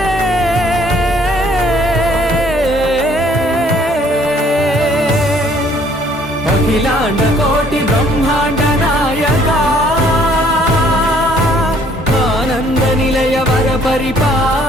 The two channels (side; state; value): both; normal; correlation 0.61